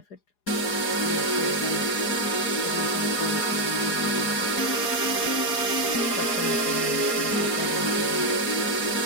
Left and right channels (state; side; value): late; right; 4.9 ms